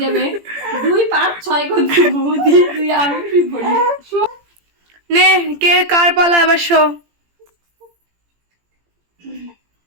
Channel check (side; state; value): left; late; 17 ms